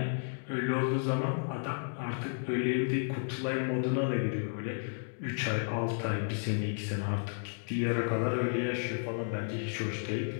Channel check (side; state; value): right; silent; digital silence